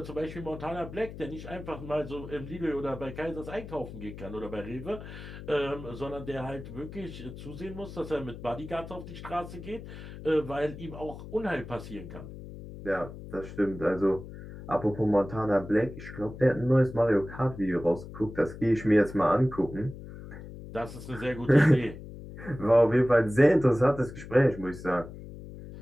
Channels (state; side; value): noise; left; hum, 13 dB below the sound